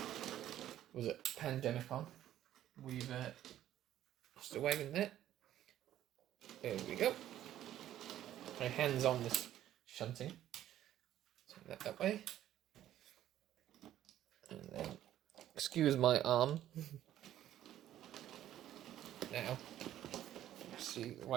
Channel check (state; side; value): quieter; left; 12.3 dB